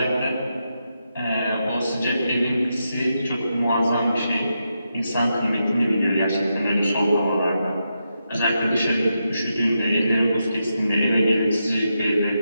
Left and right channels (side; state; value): both; inverted; correlation -0.85